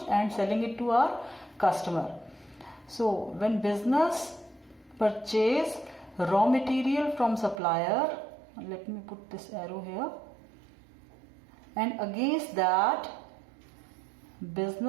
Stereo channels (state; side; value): drops out; left; at 7.6 s